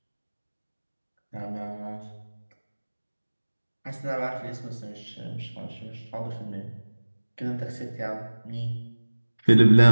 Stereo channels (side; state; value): both; inverted; correlation -1.00